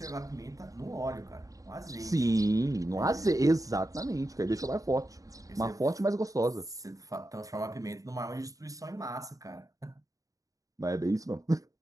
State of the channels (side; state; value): left; late; 0.17 ms